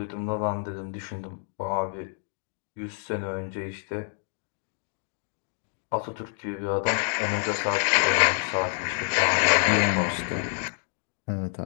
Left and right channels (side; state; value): right; silent; 56 dB below the other